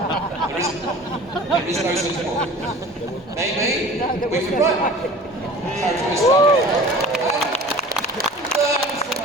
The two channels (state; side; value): normal; both; correlation 0.42